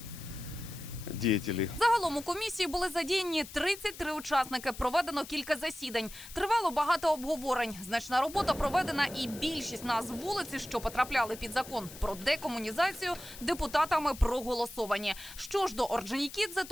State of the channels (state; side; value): noise; left; hiss, 15 dB below the sound